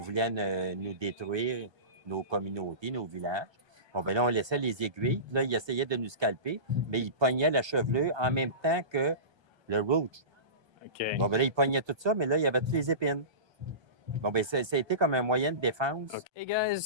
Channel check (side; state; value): left; late; 1.3 ms